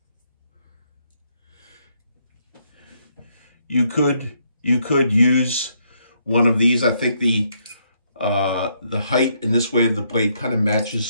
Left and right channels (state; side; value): inverted; both; correlation -0.74